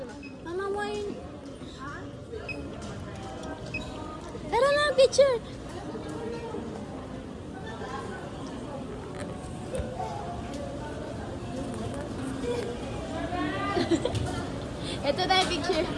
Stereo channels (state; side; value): identical; both; correlation 1.00